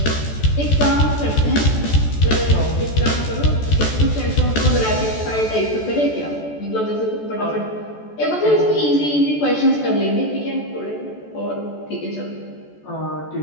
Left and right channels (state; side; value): late; right; 14 ms